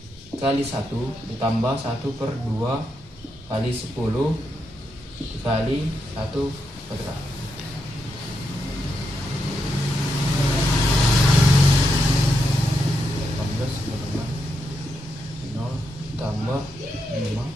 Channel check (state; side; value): normal; both; correlation 0.83